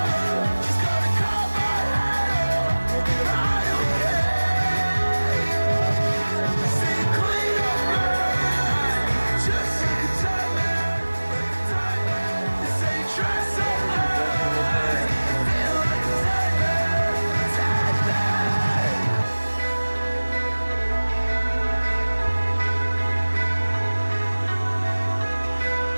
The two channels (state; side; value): inverted; both; correlation -1.00